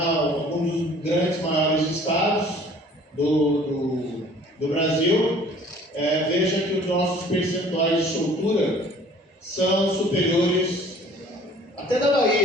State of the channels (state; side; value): normal; both; correlation 0.52